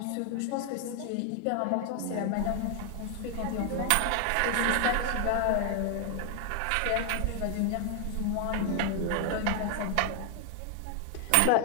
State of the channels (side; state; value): both; different; correlation 0.00